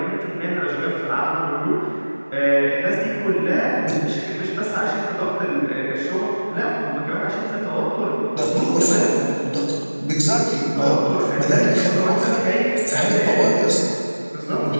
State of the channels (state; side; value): inverted; both; correlation -1.00